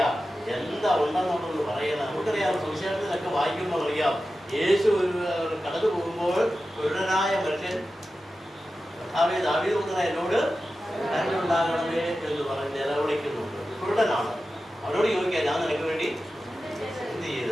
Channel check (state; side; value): normal; both; correlation 0.93